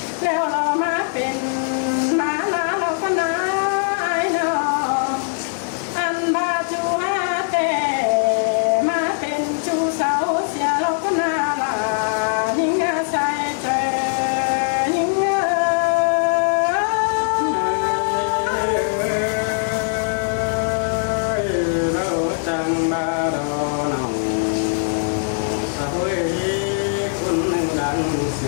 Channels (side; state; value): right; silent; digital silence